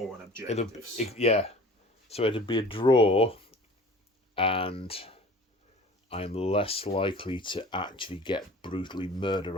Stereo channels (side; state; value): both; normal; correlation 0.44